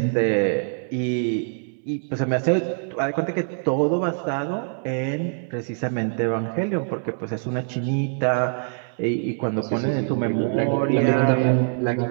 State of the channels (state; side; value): silent; left; 63 dB below the other